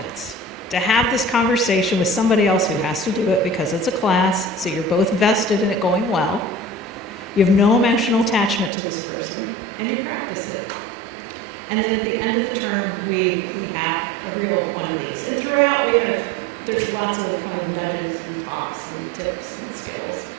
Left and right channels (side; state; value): left; drops out; at 8.7 s